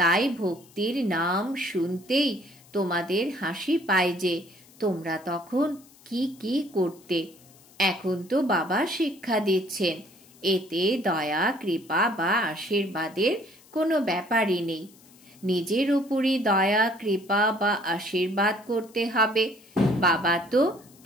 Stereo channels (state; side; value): noise; left; hiss, 26 dB below the sound